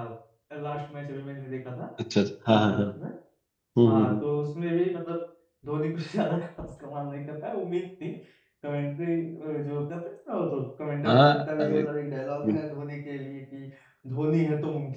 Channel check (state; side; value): identical; both; correlation 1.00